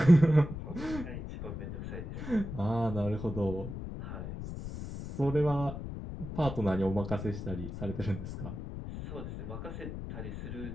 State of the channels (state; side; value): noise; left; rumble, 8 dB below the sound